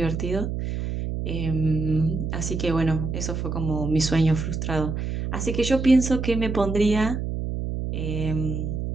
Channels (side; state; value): right; noise; hum, 3 dB below the sound